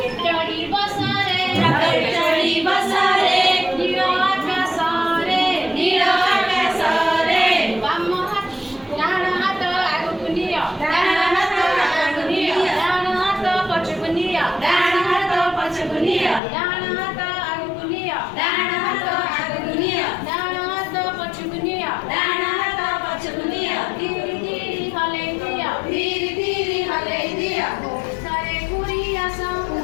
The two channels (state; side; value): drops out; right; at 16.4 s